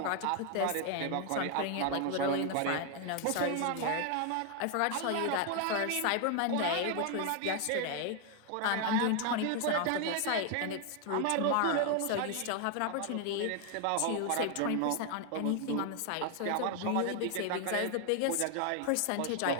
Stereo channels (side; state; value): both; different; correlation 0.00